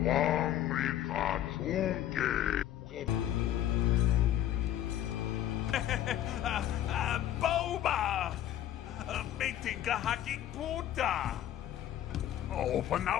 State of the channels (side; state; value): right; quieter; 11.8 dB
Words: Boba! Meeting kahaking puta! Open